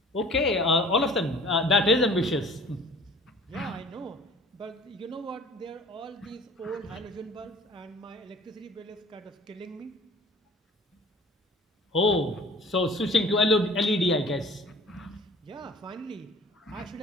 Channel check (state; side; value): normal; both; correlation 0.48